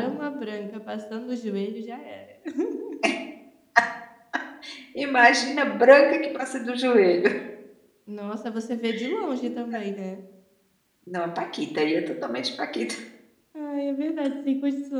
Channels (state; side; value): identical; both; correlation 1.00